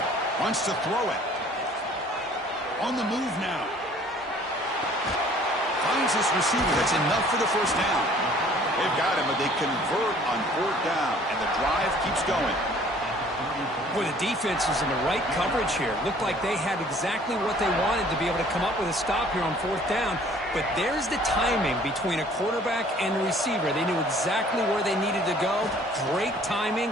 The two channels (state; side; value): normal; both; correlation 0.55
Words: Wants to throw it. On the move now. Finds this receiver. That's enough for the first down. They've got him, but they convert on 4th down, and the drive keeps going. Boy, the defense is in the right coverage here. Looked like they had exactly what they wanted to be able to come up with a stop here on 4th down. But there's the timing between a quarterback and the receiver. They knew exactly where they needed to go. Great timing